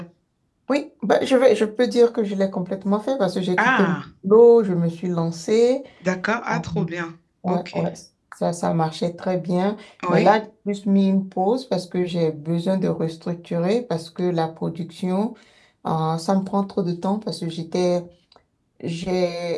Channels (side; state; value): both; identical; correlation 1.00